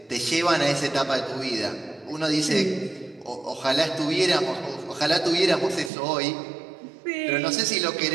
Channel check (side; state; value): left; drops out; at 5.9 s